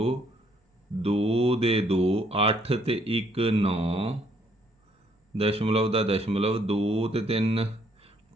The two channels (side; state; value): both; normal; correlation 0.67